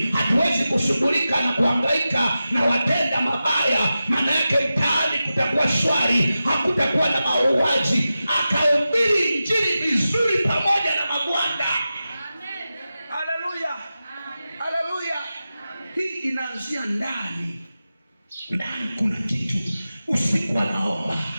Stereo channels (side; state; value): both; inverted; correlation -0.93